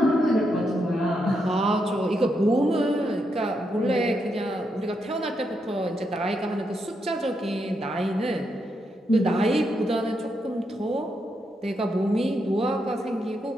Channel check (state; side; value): normal; both; correlation 0.81